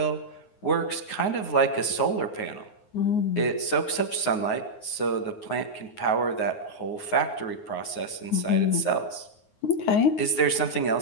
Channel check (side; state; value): right; late; 9.5 ms